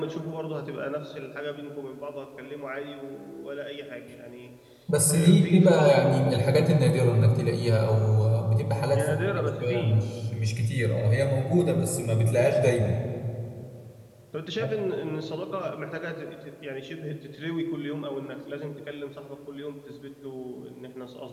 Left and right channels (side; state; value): both; identical; correlation 1.00